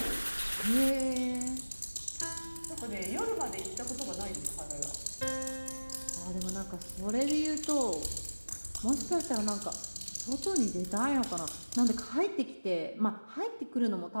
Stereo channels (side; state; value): both; inverted; correlation -1.00